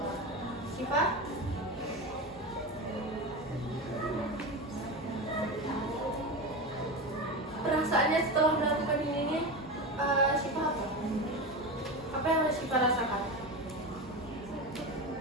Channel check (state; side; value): normal; both; correlation 0.22